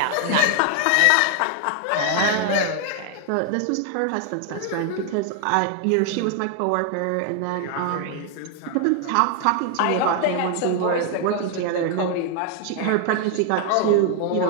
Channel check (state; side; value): different; both; correlation 0.00